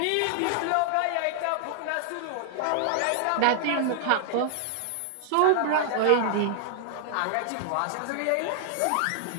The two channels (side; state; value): both; different; correlation -0.01